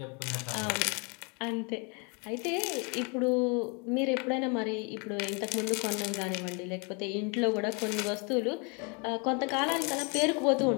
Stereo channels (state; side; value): quieter; right; 33.1 dB